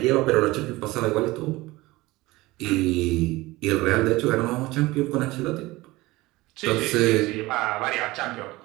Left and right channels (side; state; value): left; quieter; 20.1 dB